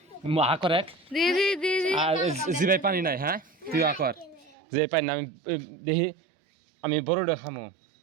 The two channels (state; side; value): drops out; left; at 4.5 s